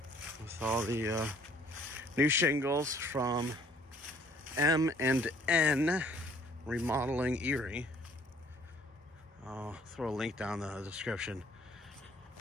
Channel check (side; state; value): both; normal; correlation 0.59